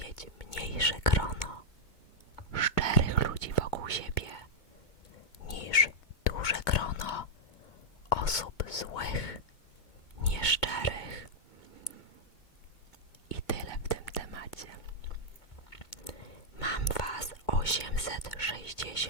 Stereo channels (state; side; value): late; right; 2.2 ms